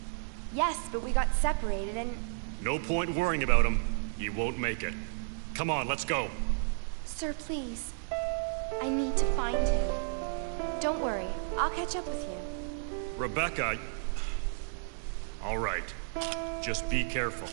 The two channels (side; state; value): left; silent; digital silence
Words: Yes, but we got separated and... No point worrying about him. He won't make it. Come on, let's go. Sir, please. I need to find him. Don't worry. I'll catch up with you. Rebecca... All right. Just be careful.